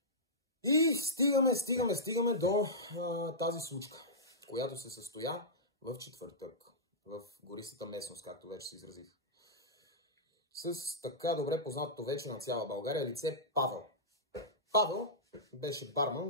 И стигаме до тази случка, която се състоя в четвъртък, в гористата местност, както вече се изразих. С така добре познатото вече на цяла България лице Павел. Павел беше барман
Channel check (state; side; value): normal; both; correlation -0.14